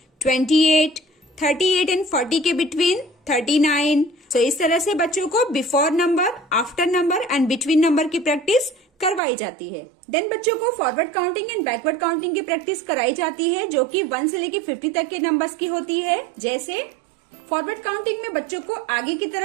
28, 38 एंड 40 के बिटवीन 39. तो इस तरह से बच्चों को before number, after number and between number की प्रैक्टिस करवाई जाती है. देन बच्चों को forward counting and backward counting की प्रैक्टिस कराई जाती है, जो कि 1 से लेके 50 तक के नंबर्स की होती है. जैसे फॉरवर्ड काउंटिंग में बच्चों को आगे की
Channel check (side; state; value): left; drops out; at 9.2 s